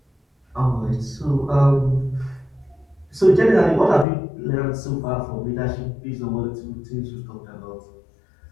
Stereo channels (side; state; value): right; drops out; at 4.0 s